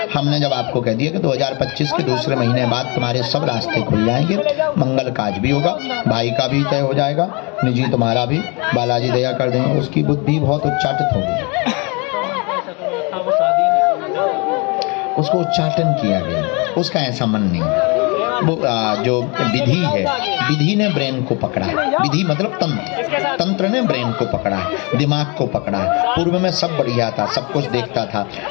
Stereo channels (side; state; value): right; quieter; 30.0 dB